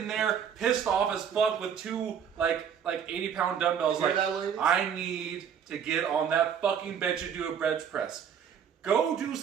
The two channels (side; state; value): left; quieter; 8.0 dB